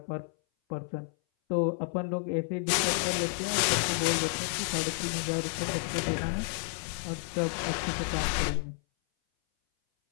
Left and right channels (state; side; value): silent; right; 57 dB below the other